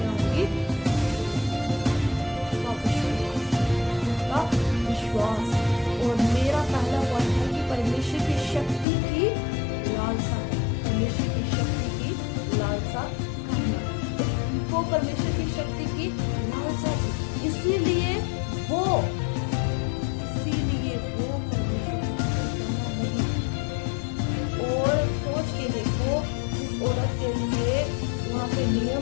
होंगी, विश्वास। और मेरा पहला पॉइंट है कि परमेश्वर की शक्ति की लालसा, परमेश्वर की शक्ति की लालसा करना, वो परमेश्वर की शक्ति की लालसा थी, इसीलिए वो परमेश्वर नहीं। और सोच के देखो, इस औरत के लिए वहाँ पे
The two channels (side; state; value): right; drops out; at 8.8 s